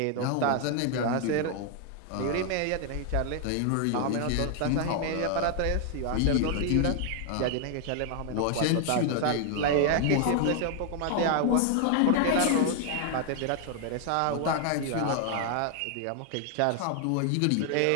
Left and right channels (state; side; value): different; both; correlation 0.00